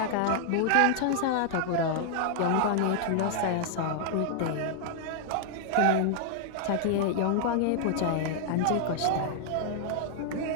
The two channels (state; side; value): different; both; correlation -0.01